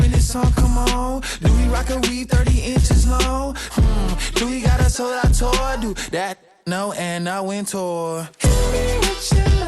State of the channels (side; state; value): both; identical; correlation 1.00